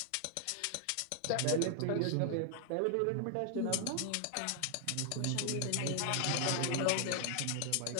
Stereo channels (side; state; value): both; different; correlation 0.00